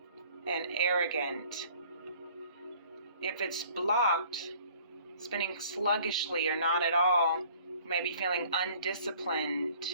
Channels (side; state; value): both; inverted; correlation -0.54